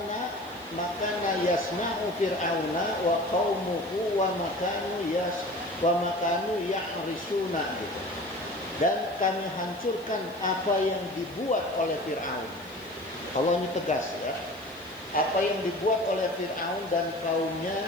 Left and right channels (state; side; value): noise; left; hiss, 24 dB below the sound